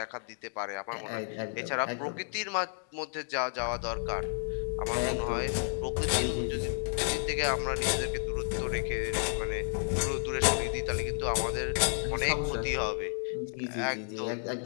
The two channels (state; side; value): silent; right; digital silence